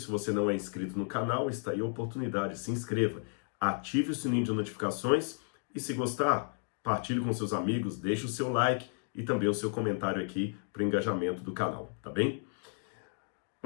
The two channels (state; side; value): silent; right; 56 dB below the other